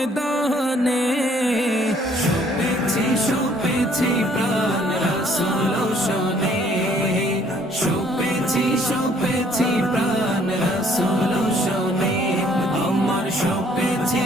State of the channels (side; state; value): both; normal; correlation 0.61